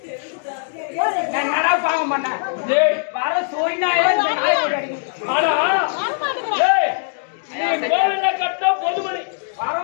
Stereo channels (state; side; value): silent; right; digital silence